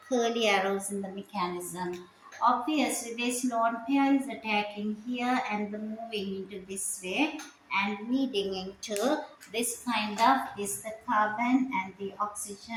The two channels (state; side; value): identical; both; correlation 1.00